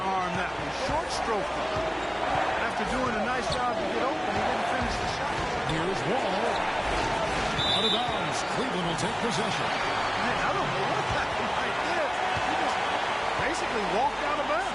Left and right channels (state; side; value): identical; both; correlation 1.00